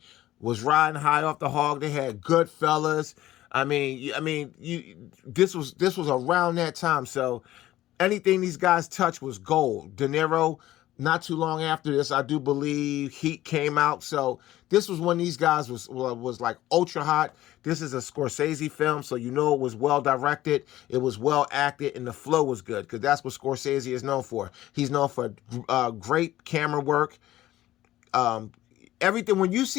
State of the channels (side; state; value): right; quieter; 14.9 dB